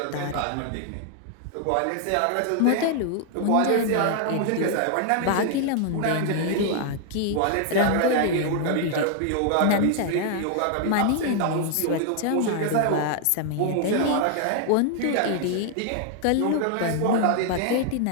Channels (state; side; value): different; both; correlation 0.00